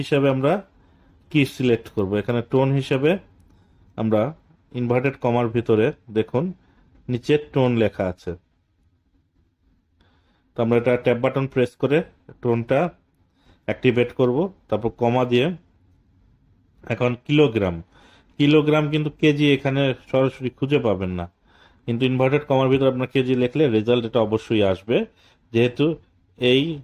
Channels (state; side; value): identical; both; correlation 1.00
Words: হিসাবে আমরা কি সিলেক্ট করব, এখানে টোন হিসাবে আমরা ইনভার্টেড কমার ভিতরে দেখুন নিচে টোন লেখা আছে। তো আমরা এটা ট্যাব বাটন প্রেস করে টোনটা অ্যাক্টিভেট করব, তারপর কমা দিয়ে এখন কিলোগ্রাম, কিলোগ্রাম কিন্তু কেজি এখানে সরাসরি খুঁজে পাবেন না, কিন্তু ইনভার্টেড কমার ভিতরে আপনার কেজি লিখলে রেজাল্ট এটা অবশ্যই আসবে, যেহেতু এই